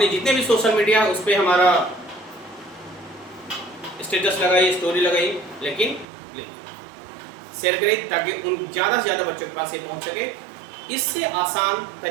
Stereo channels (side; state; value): left; drops out; at 6.1 s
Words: जितने भी सोशल मीडिया उस पर हमारा स्टेटस लगाइए, स्टोरी लगाइए, लेकिन शेयर करें ताकि उन ज़्यादा से ज़्यादा बच्चों के पास ये पहुंच सके। इससे आसान